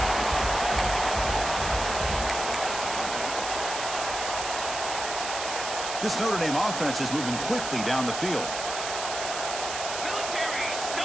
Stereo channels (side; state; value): right; noise; hiss, 5 dB below the sound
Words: This Notre Dame offense is moving quickly down the field.